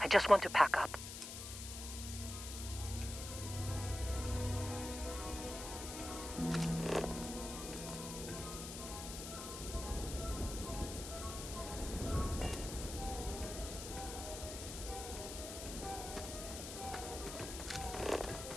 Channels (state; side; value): noise; left; hiss, 8 dB below the sound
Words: I just want to pack up.